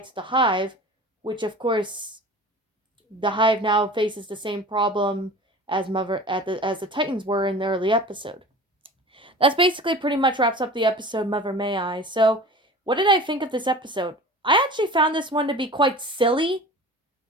the hive, which of course, the hive now faces the same problem as the Titans were in the early episode. That's basically pretty much wraps up the episode Mother May I. So, what did I think of this episode? I actually found this one to be quite silly.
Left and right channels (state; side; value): normal; both; correlation 0.38